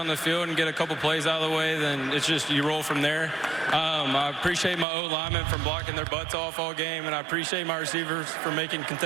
the field and get a couple plays out of the way, then it's just you roll from there. I appreciate my O-linemen for blocking their butts off all game, and I appreciate my receivers for making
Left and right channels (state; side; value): drops out; left; at 4.9 s